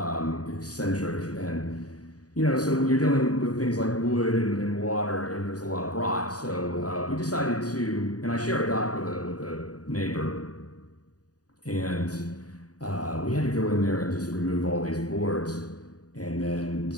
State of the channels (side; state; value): right; late; 0.68 ms